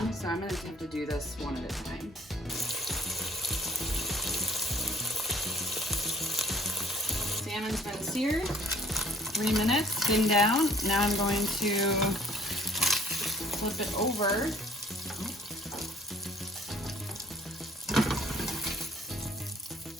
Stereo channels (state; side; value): normal; both; correlation 0.57